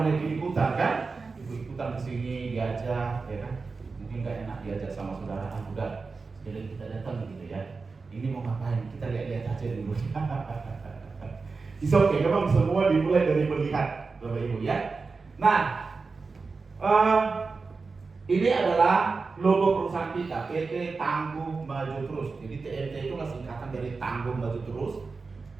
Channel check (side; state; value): left; quieter; 4.3 dB